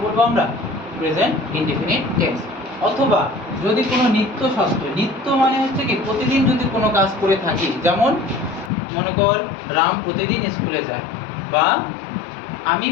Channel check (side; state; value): right; drops out; at 8.7 s